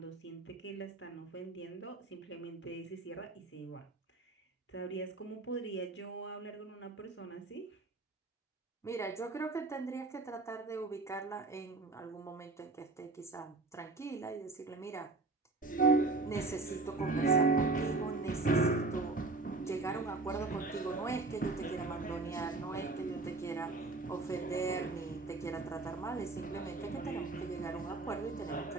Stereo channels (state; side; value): quieter; left; 3.5 dB